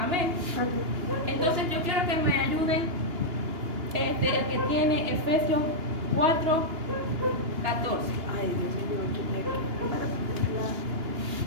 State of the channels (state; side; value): late; left; 2.9 ms